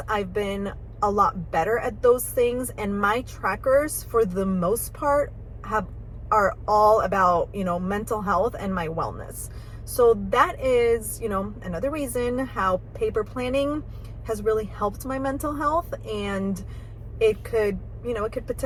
I've been a lot better at those things. And my trackers, for the most part, are all about, mental health and my wellness. So that is, another reason how paper planning has really helped my mental health. And it could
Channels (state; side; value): identical; both; correlation 1.00